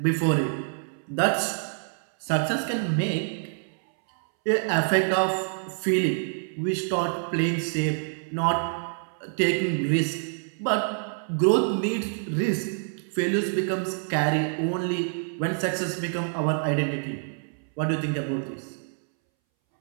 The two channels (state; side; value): silent; left; 60 dB below the other